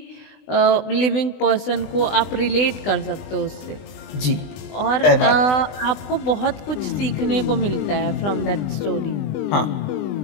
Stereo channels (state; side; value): late; right; 20 ms